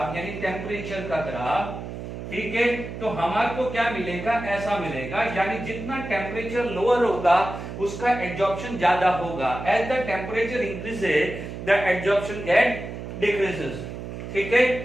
यानी टेम्परेचर का ग्राफ, ठीक है, तो हमारे को क्या मिलेगा, ऐसा मिलेगा, यानी जितना टेम्परेचर लोअर होगा उसका एडजॉर्प्शन ज्यादा होगा. As the temperature increases the adsorption get decreases. ठीक है,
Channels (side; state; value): right; noise; hum, 9 dB below the sound